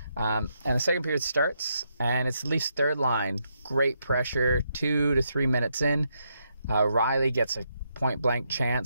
And the second period starts, and it's the Leafs' third line. Great pressure, 2 to 3 minutes in. Riley gets a point-blank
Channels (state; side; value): inverted; both; correlation -0.79